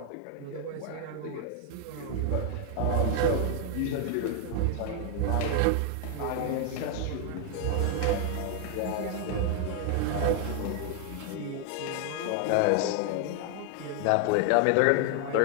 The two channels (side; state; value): both; different; correlation 0.00